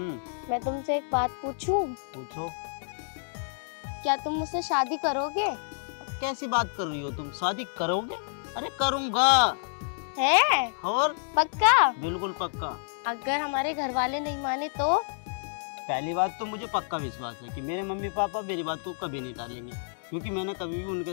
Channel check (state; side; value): silent; right; digital silence